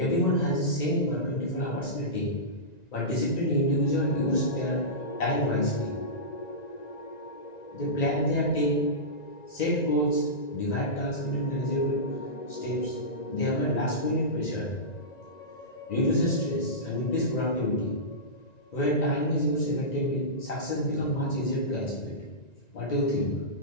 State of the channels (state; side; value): late; right; 1.9 ms